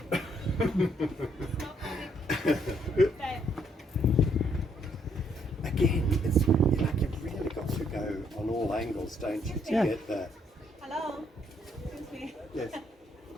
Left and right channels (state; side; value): normal; both; correlation 0.70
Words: Again, it's like you've really got to go on all angles, don't you, to get that. Hello. Excuse me. Yes.